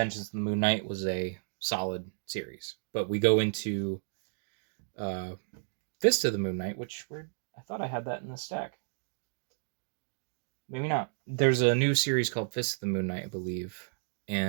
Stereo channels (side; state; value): left; silent; digital silence